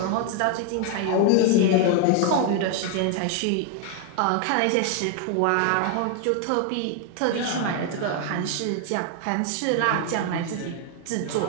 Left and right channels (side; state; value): both; different; correlation 0.01